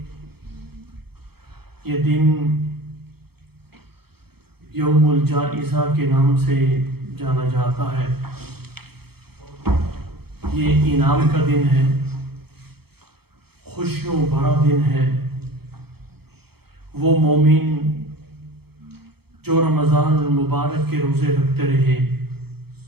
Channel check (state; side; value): late; left; 0.96 ms